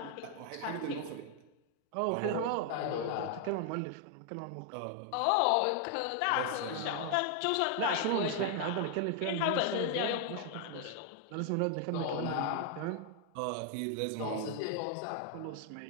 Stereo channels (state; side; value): different; both; correlation 0.00